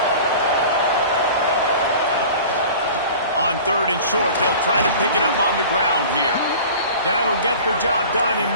On 3rd and short, they'll try to pick it up on the ground here. That'll get the job done and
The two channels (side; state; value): both; inverted; correlation -0.41